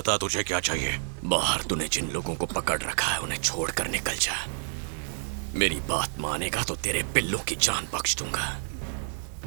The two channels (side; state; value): left; silent; 59 dB below the other